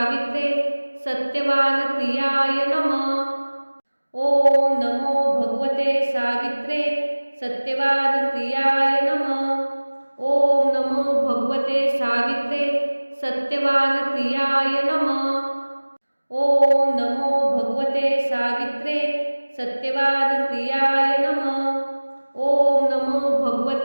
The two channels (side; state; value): both; inverted; correlation -1.00